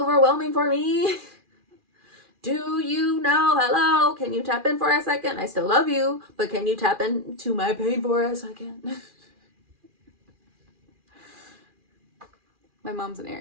for me? Do you know, hello, can you tap in for a second? I still love you, but can you tap into my pain for a second? My mom's an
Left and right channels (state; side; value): late; left; 2.4 ms